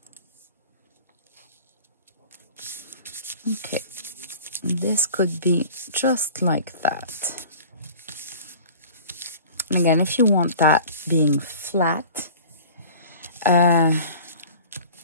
Okay, this could be just like that. And again, if you want that being flat,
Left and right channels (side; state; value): both; inverted; correlation -0.42